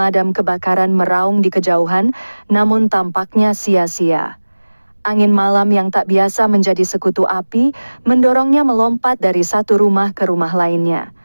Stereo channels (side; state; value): both; inverted; correlation -1.00